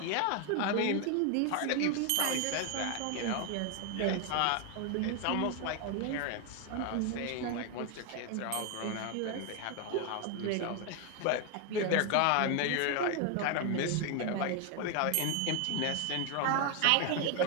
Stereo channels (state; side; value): different; both; correlation 0.01